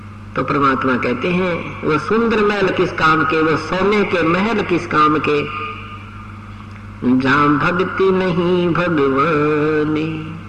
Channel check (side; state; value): both; identical; correlation 1.00